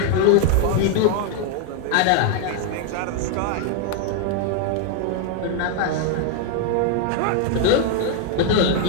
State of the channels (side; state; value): both; different; correlation 0.00